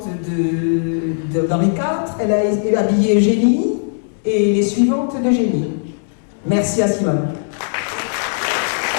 d'Henri IV. Elle a habillé Eugénie et les suivantes d'Eugénie. Merci à Simone.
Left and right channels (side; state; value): right; silent; digital silence